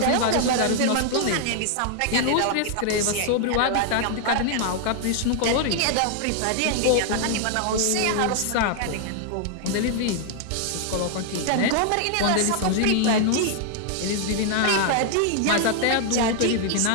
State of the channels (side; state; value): both; different; correlation 0.00